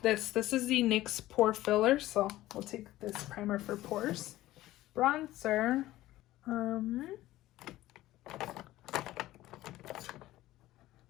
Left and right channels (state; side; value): quieter; right; 15.9 dB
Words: this. This is the NYX Pore Filler. So we'll take this primer for pores. Bronzer.